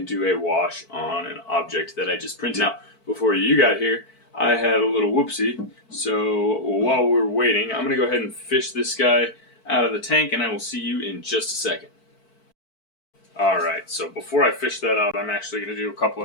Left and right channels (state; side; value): late; right; 4.5 ms